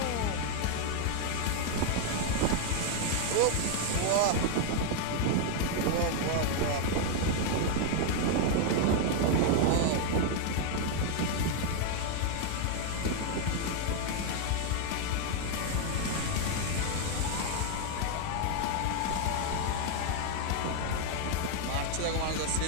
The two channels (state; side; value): different; both; correlation 0.00